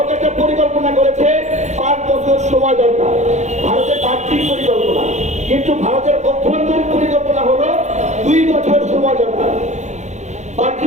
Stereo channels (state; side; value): late; left; 0.34 ms